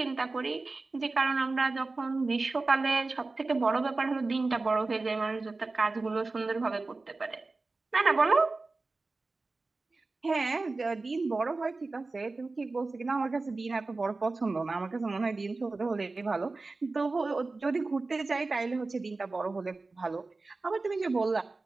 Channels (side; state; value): left; quieter; 3.6 dB